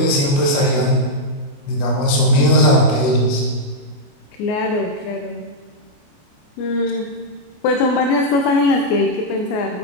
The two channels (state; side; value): late; right; 28 ms